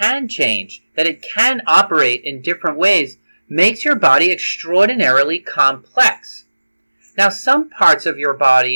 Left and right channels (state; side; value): inverted; both; correlation -1.00